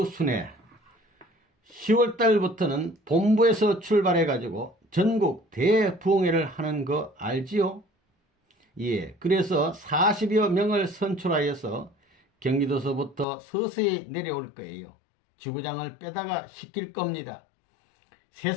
순회 10월달부터는 본부에서 출발해가지고 전국 대부흥회를 하는 거 알지요? 예, 그래서 40여 명을 선출하여서 경기도서부터 서서히 내려올 거예요. 지구장을 빼다가 시킬 겁니다.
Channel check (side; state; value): right; drops out; at 13.2 s